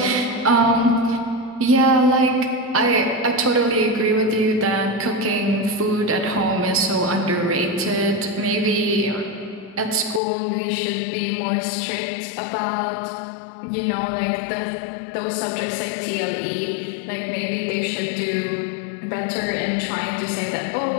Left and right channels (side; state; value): right; drops out; at 10.2 s